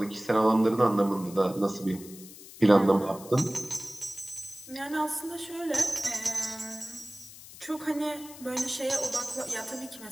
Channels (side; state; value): left; noise; hiss, 17 dB below the sound